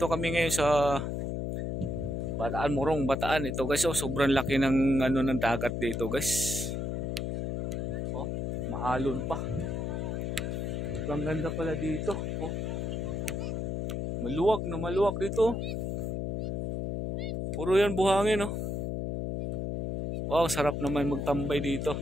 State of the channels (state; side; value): noise; left; hum, 2 dB below the sound